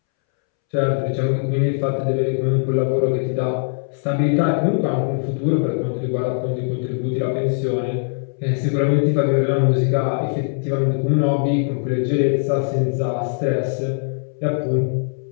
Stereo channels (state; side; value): silent; right; 65 dB below the other